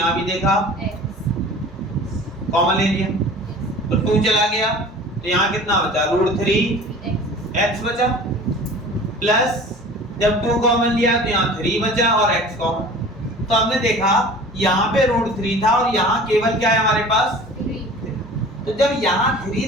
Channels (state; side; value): normal; both; correlation 0.42